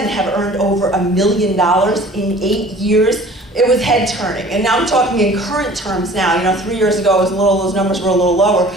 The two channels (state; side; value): normal; both; correlation 0.47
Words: have earned over $1 million in 8 years. It was head turning. And now I'm talking in current terms now. 3 years ago, those numbers were a little lower.